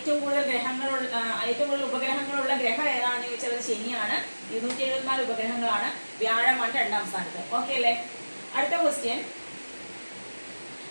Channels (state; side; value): inverted; both; correlation -1.00